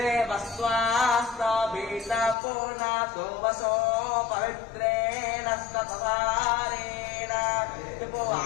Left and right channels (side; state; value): right; drops out; at 2.4 s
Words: वसो पवित्रेण सपधारेण